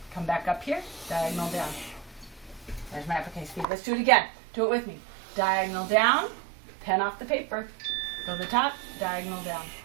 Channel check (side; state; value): left; drops out; at 3.7 s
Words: Come back up here, diagonal down. There's my uppercase V. Let's do it again. Do it with me. Diagonal down, pen off the paper. Go to the top, diagonal down.